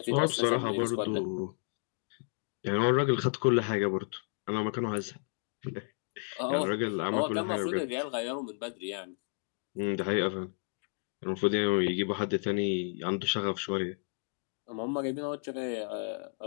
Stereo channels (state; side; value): silent; right; 56 dB below the other